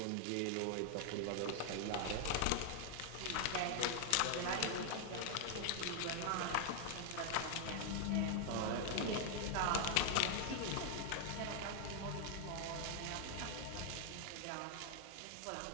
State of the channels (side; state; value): both; different; correlation 0.00